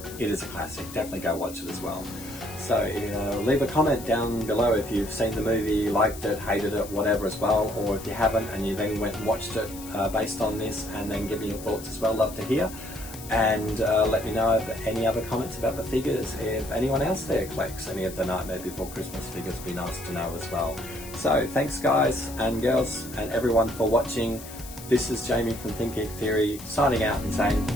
is a classic. Definitely go watch it as well. So leave a comment down below if you've seen the movie, liked it, hated it, whatever as well, or if you haven't and you then went and watched it based on this, and then give me your thoughts as well. Love to hear. And let me know if any other comments about the figures. If anyone else there collects any of the Nightmare Before Christmas figures, it'd be nice to know as well. So thanks guys and girls and everyone for watching. This is Jamie from Think Geek Theory signing out and saying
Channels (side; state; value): left; noise; hiss, 14 dB below the sound